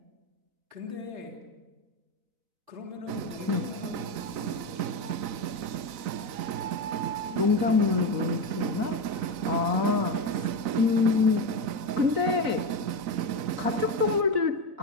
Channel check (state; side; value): late; left; 4.0 ms